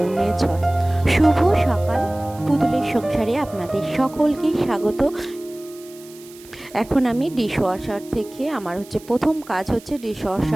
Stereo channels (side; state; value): right; noise; hiss, 22 dB below the sound